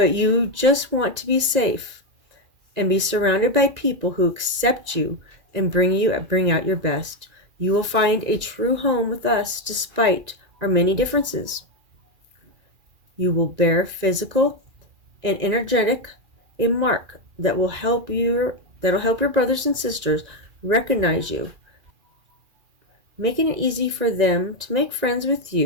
you just want to be safe and be surrounded by people who accept you and bring out your best. You will find a true home with us despite our many differences. You will bear physical and energetic a mark that will help your brothers and sisters recognize you, making it easy for them to make friends with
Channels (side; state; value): left; late; 2.4 ms